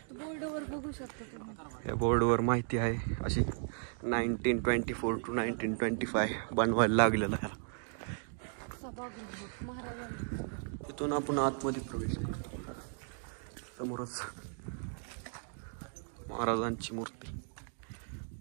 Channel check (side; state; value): left; silent; 54 dB below the other